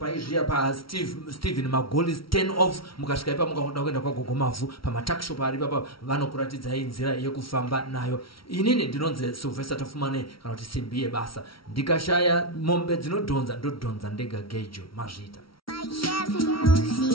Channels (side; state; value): right; late; 0.74 ms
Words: paSteven Magolis 10 off mukasvika ipa mukaoda kuenda kwagogo Mavhu pamatakshop ari papa vanokuratidzai nzira yekufamba nayo. Inini ndinonzi Silvester tafumane kana kuti simbi yebasa ndikashaya mombe dzinodhonza ndodhonza ndega gejo mazvita.